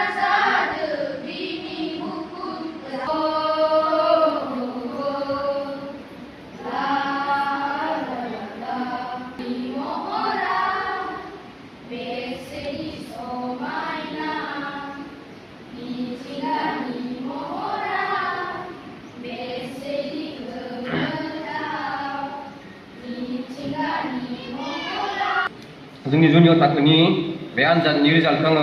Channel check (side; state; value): both; identical; correlation 1.00